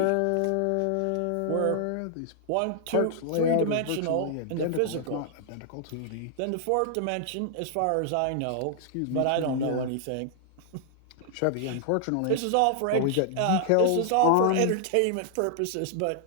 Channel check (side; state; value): both; different; correlation -0.01